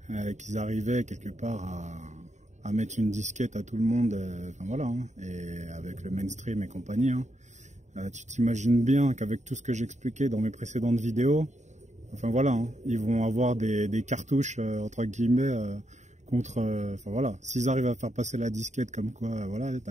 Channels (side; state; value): left; late; 0.34 ms